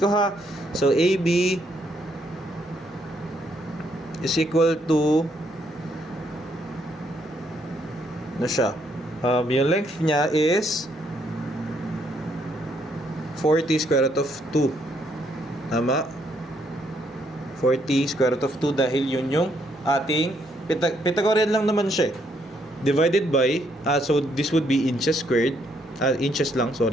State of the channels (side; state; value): both; normal; correlation 0.72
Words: ko ha. So, AB is equal to na siya. Yung length niya is 40 square root of 2. Tama? 40 square root of 2 dahil yun yung ating Pythagorean lang naman siya. Divided by, so this would be inches squared. Inches lang,